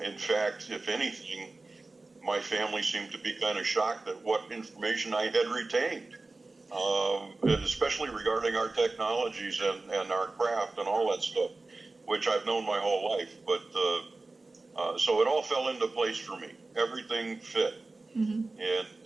In fact, if anything, my family seemed to be kind of shocked at what information I had retained, especially regarding our technologies and our craft and all that stuff, which I've known my whole life. But so it all fell into place for me. Everything fit. And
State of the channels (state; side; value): quieter; left; 3.3 dB